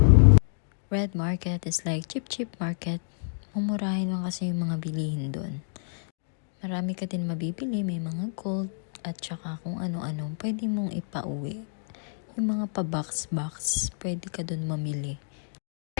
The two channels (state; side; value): silent; right; digital silence